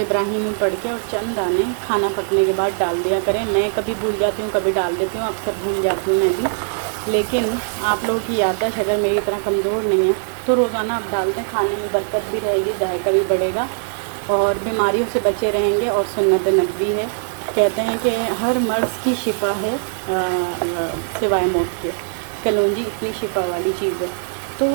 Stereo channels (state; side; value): silent; left; digital silence